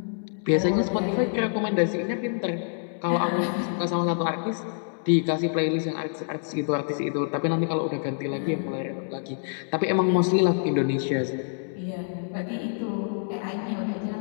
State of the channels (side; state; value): right; silent; digital silence